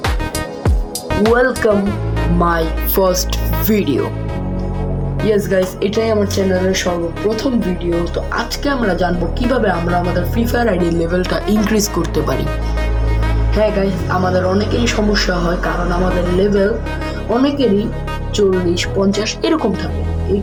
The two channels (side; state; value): both; identical; correlation 1.00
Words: Welcome my first video. Yes guys, এটাই আমার চ্যানেলের সর্বপ্রথম ভিডিও। তো আজকে আমরা জানবো কিভাবে আমরা আমাদের ফ্রি ফায়ার আইডি লেভেলটা ইনক্রিজ করতে পারি। হ্যাঁ গাইস, আমাদের অনেকেরই সমস্যা হয় কারণ আমাদের লেভেল অনেকেরই 40-50 এরকম থাকে। এই